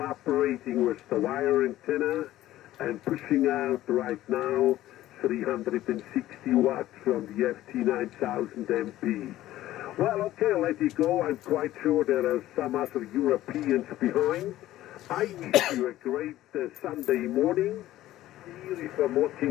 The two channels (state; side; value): quieter; right; 14.7 dB